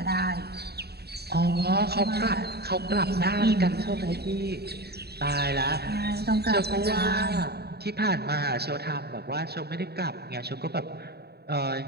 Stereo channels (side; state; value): left; late; 0.47 ms